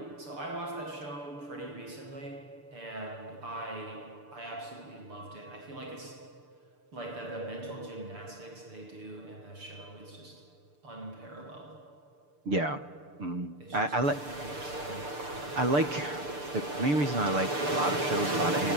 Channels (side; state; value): left; late; 6.8 ms